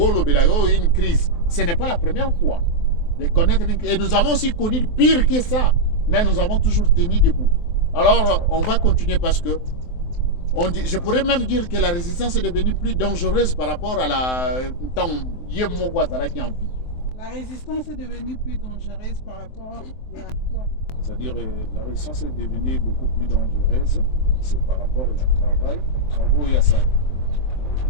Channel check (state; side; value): late; right; 23 ms